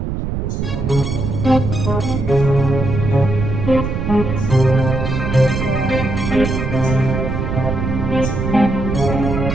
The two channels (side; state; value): right; noise; rumble, 3 dB below the sound